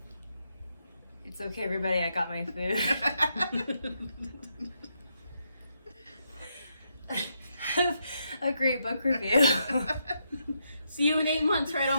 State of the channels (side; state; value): both; inverted; correlation -0.80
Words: It's okay, everybody. I got my food. Have a great book review. See you in 8 months, right